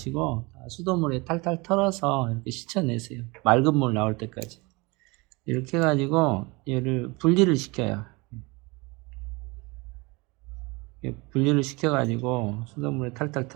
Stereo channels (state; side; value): quieter; left; 25.9 dB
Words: 수돗물에 탈탈 털어서 이렇게 씻어내세요. 맑은 물 나올 때까지. 이렇게 해가지고 얘를 분리를 시켜요. 분리를 시켜가지고 수돗물에 탈탈